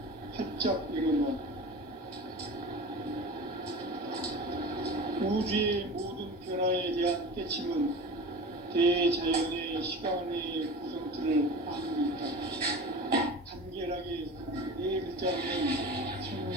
활짝 열어놓았다. 우주의 모든 변화에 대한 깨침은 대자연의 시간의 구성틀을 아무리 있다. 간결하게 네 글자로는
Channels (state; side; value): normal; both; correlation 0.34